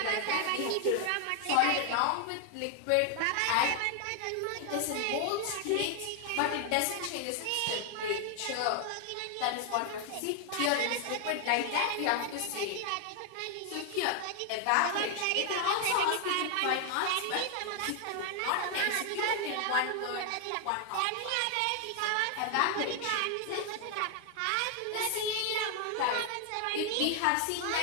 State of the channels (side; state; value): both; different; correlation 0.00